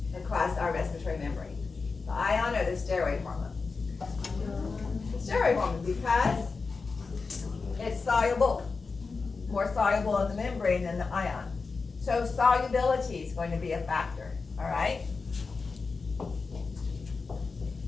across our respiratory membrane? The ion or the steroid hormone? The steroid hormone, because it's soluble, more soluble in the membrane than the ion. So solubility is going to be a factor, all right?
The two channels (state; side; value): quieter; right; 4.5 dB